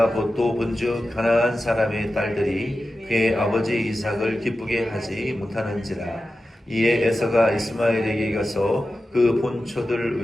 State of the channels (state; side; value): normal; both; correlation 0.93